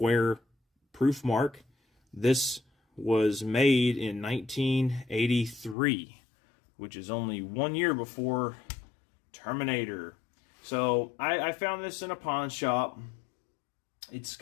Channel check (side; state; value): right; drops out; at 5.8 s